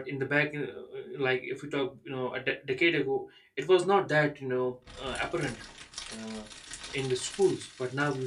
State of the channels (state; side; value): identical; both; correlation 1.00